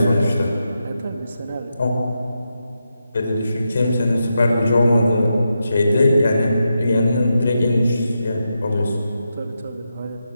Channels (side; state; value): both; inverted; correlation -0.86